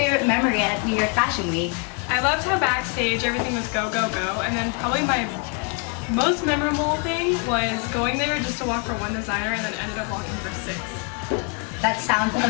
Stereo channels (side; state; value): right; quieter; 36.0 dB